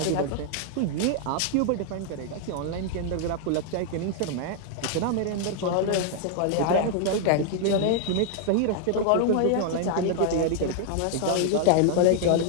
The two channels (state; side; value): different; both; correlation -0.01